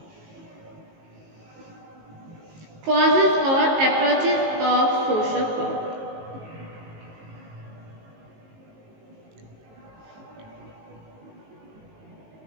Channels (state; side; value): late; left; 19 ms